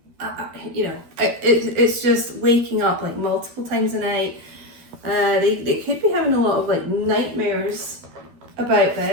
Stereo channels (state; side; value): late; left; 12 ms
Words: You know, it's just waking up, like, multiple times a night. They could be having a lot of, like, nightmares about